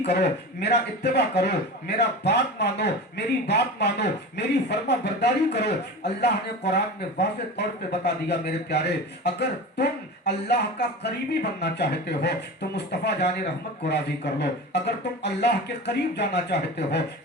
کرو، میرا اتباع کرو، میرا بات مانو، میری بات مانو، میری فرما برداری کرو۔ اللہ نے قرآن میں واضح طور پہ بتا دیا میرے پیارے، اگر تم اللہ کا قریبی بننا چاہتے ہو تو مصطفیٰ جان رحمت کو راضی کر لو، اگر تم اللہ کے قریب جانا چاہتے ہو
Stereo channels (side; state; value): both; normal; correlation 0.31